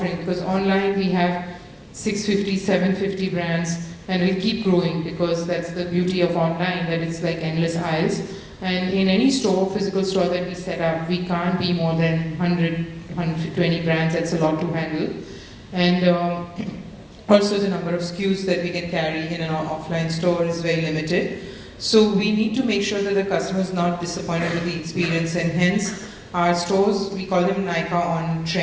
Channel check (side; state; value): both; identical; correlation 1.00